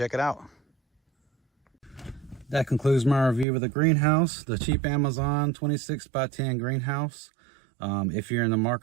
it out. That concludes my review of the greenhouse, the cheap Amazon 26 by 10 greenhouse. If you're in the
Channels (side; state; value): left; drops out; at 3.5 s